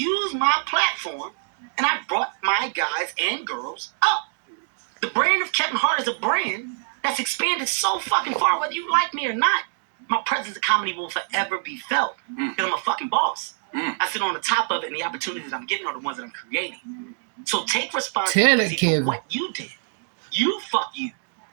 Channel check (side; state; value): left; silent; digital silence